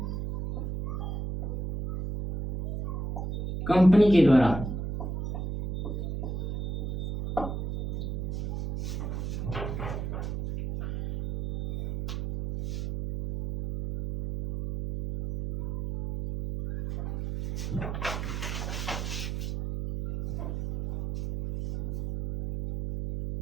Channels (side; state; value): right; noise; hum, 4 dB below the sound